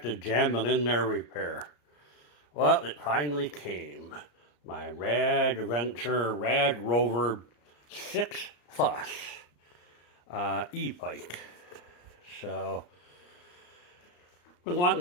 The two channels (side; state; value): right; late; 34 ms